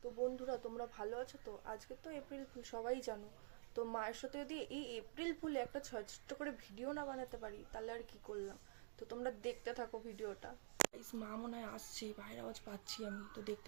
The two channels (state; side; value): silent; left; digital silence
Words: বন্ধুরা তোমরা ভালো আছো তো? আজকে তো এপ্রিল ফুল, সবাই জানো। তো মায়ের সাথে যদি এই এপ্রিল ফুলে একটা ছোট্ট করে ভিডিও না বানাতে পারি তাহলে আর কি করলাম। তো তোমরা দেখতে থাকো ভিডিওটা। মা মনে হয় আসছে, বাইরে আওয়াজ পাচ্ছি আমি, তো